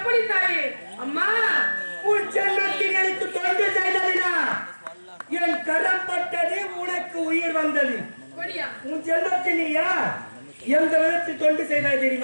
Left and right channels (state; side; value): inverted; both; correlation -1.00